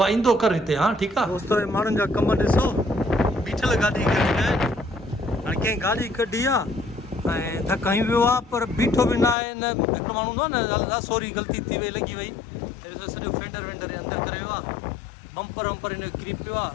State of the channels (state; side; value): drops out; right; at 9.3 s